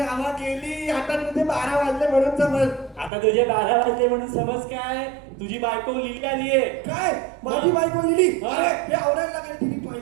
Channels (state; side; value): drops out; left; at 3.1 s